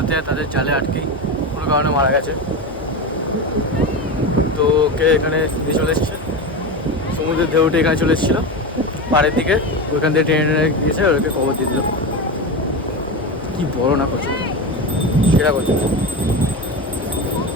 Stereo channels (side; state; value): both; normal; correlation 0.21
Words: যায় তাদের জালে আটকেই কোনো কারণে মারা গেছে। তো ওকে এখানে দিয়ে চলে এসছে, সমুদ্রের ঢেউটে এখানে চলে এসেছিলো পাড়ের দিকে, ওইখান থেকে টেনে টেনে গিয়েছে, ওকে খবর দিয়ে দিল। কি বড় না কচ্ছপ, সেটা কচ্ছপ।